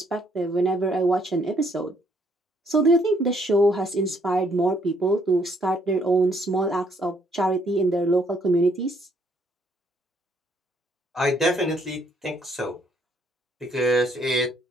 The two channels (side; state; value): both; normal; correlation 0.68